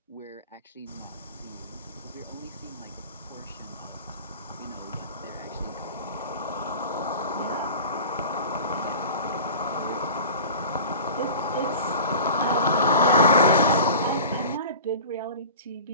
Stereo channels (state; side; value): inverted; both; correlation -0.38